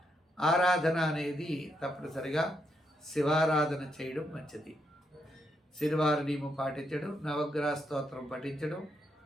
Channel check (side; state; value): both; normal; correlation 0.79